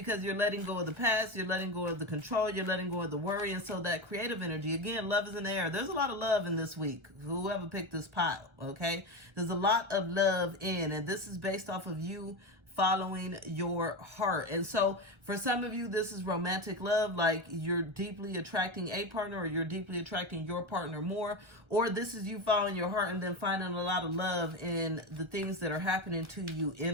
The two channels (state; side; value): late; left; 1.1 ms